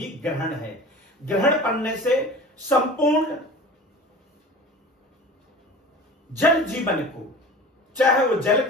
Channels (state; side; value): normal; both; correlation 0.38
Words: ग्रहण है। ग्रहण पड़ने से संपूर्ण जल जीवन को, चाहे वो जल